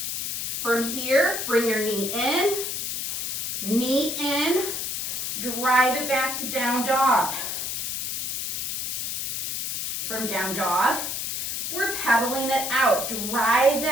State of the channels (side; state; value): left; noise; hiss, 3 dB below the sound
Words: From here, bring your knee in, drive it back to down dog. From down dog, we're pedaling it out. Drive